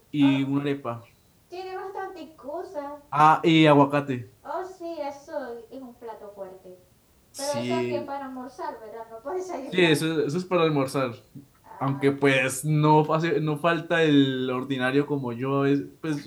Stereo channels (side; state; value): both; identical; correlation 1.00